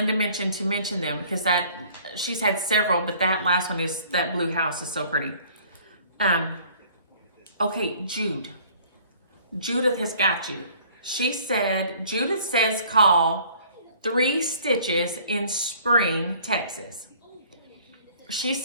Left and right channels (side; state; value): both; inverted; correlation -0.54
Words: mentioned to mention them because she's had several, but that last one is, that blue house is so pretty. Okay, Judith has got you. She said, Judith says call 3 Stitches in Spring, Texas. She